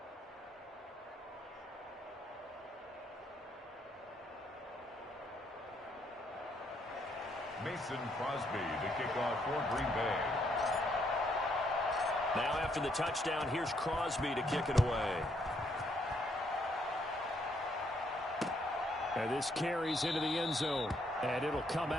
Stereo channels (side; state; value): both; normal; correlation 0.72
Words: Mason Crosby to kick off for Green Bay. Now after the touchdown, here's Crosby to kick it away. And this carries into the end zone. And it'll come